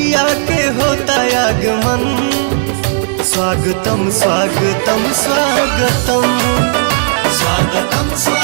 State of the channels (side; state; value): left; silent; digital silence